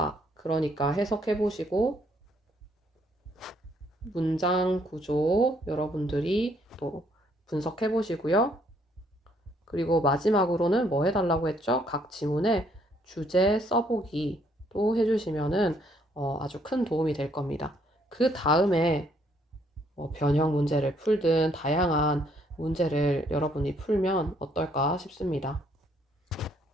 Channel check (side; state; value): both; normal; correlation 0.68